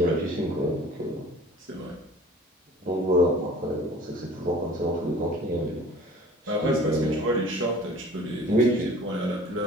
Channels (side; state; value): both; normal; correlation 0.46